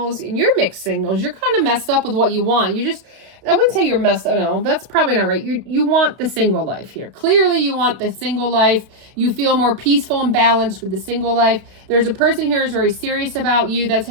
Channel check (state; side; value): late; left; 32 ms